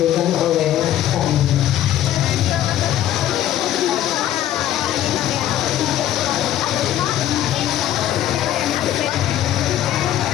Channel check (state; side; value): quieter; right; 12.2 dB